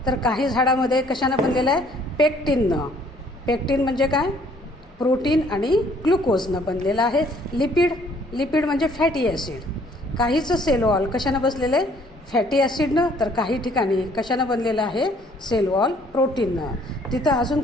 तर काही झाडामध्ये कशानं बनलेलं आहे? पेक्टिननं. पेक्टिन म्हणजे काय? प्रोटीन आणि ग्लुकोजनं बनलेलं आहे. लिपिड म्हणजे फॅटी ॲसिड. काहीचं सेल वॉल कशानं बसलेलं आहे? फॅटी ॲसिडनं. तर काही ठिकाणी कशानं बनलेलं आहे? सेल वॉल प्रोटीननं. तिथं अजून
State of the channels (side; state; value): both; normal; correlation 0.61